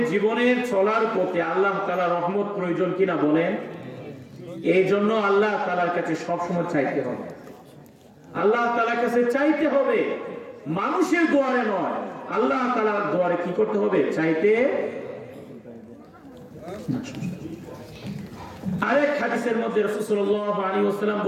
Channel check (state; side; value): identical; both; correlation 1.00